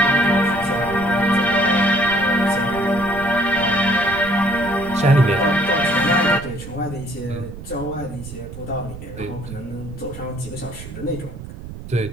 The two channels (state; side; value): noise; right; rumble, 12 dB below the sound